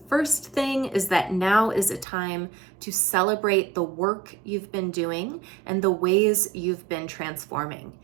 first thing is that now is a time to celebrate the work you've been doing and the ways you've been transforming.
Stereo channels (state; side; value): drops out; left; at 2.1 s